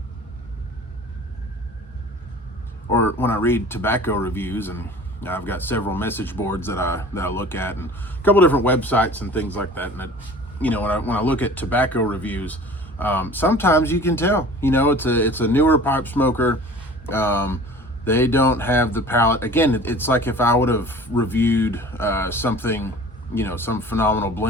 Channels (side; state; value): both; normal; correlation 0.43